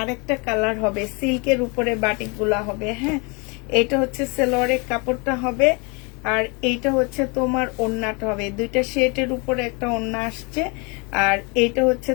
কালার হবে, সিল্কের উপরে বাটিক গুলা হবে, হ্যাঁ এটা হচ্ছে সেলোয়ারের কাপড়টা হবে, আর এইটা হচ্ছে তোমার ওড়নাটা হবে। দুইটা শেডের উপরে একটা ওড়না আসছে, আর এইটা হচ্ছে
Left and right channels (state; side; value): quieter; right; 31.2 dB